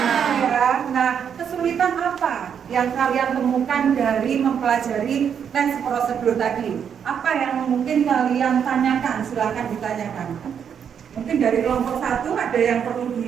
Ya. Nah, kesulitan apa yang kalian temukan dari mempelajari tes prosedur tadi? Apa yang mungkin kalian tanyakan? Silahkan ditanyakan. Mungkin dari kelompok 1 ada yang perlu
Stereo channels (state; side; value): quieter; left; 7.8 dB